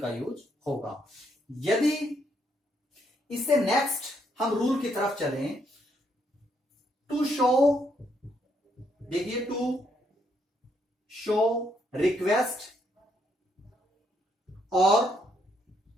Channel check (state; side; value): normal; both; correlation 0.74